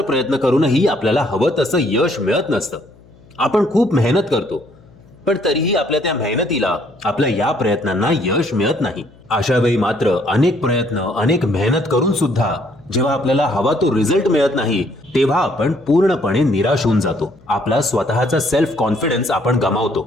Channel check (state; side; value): noise; left; hum, 27 dB below the sound